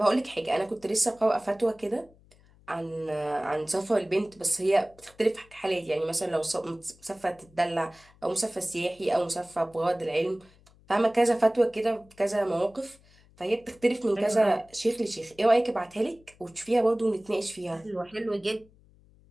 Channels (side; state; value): left; noise; hum, 28 dB below the sound